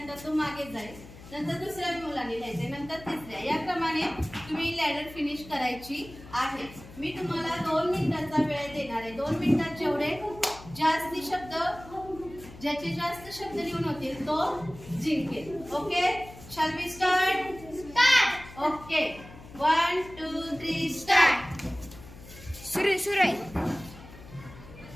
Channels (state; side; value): noise; left; hum, 17 dB below the sound